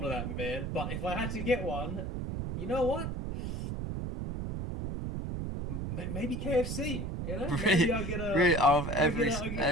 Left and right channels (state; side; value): noise; right; rumble, 4 dB below the sound